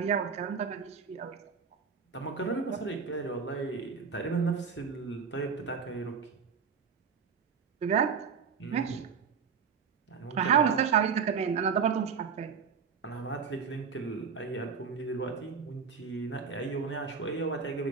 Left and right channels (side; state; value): left; quieter; 6.2 dB